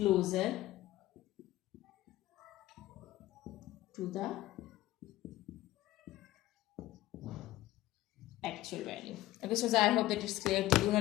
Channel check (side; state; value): right; quieter; 15.9 dB